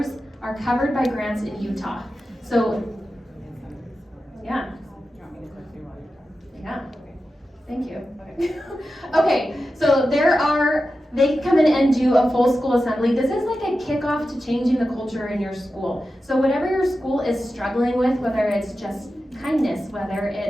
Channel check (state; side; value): normal; both; correlation 0.92